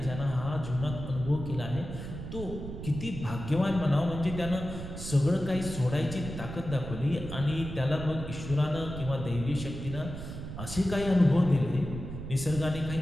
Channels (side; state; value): right; noise; rumble, 8 dB below the sound